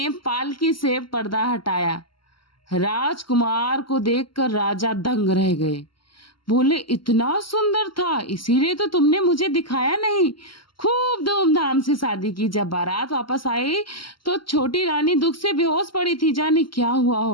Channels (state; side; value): late; right; 0.73 ms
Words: पालकी से पर्दा हटाया। राजकुमार को देखकर राजा दंग रह गए। बोले, इतना सुंदर था, इसीलिए तो तुमने मुझे दिखाया नहीं। खूब धूमधाम से शादी की। जब बारात वापस आई तो छोटी रानी दुख से बेहोश पड़ी थी, जाने क्या हुआ